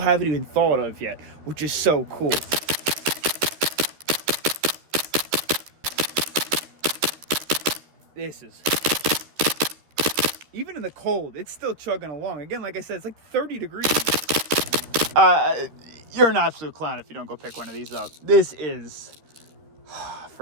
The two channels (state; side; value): late; left; 13 ms